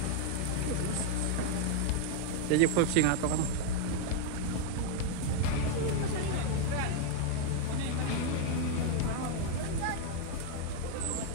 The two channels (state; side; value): different; both; correlation 0.00